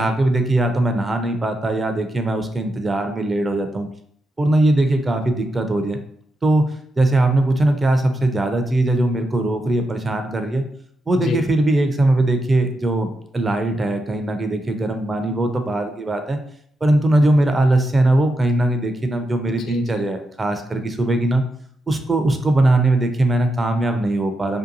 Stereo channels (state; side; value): normal; both; correlation 0.86